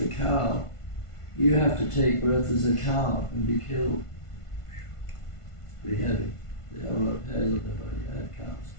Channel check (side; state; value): right; late; 1.5 ms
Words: cow, you have to take birth as a cow and be killed. It's pretty heavy. They have a lot of hairs on their body. I have cows.